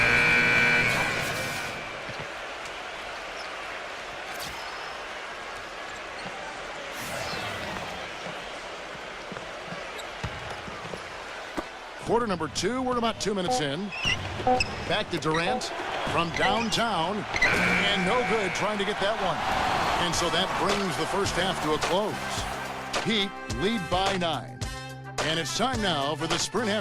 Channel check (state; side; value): identical; both; correlation 1.00